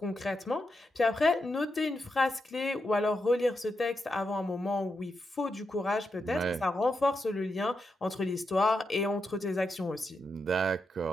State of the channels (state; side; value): normal; both; correlation 0.85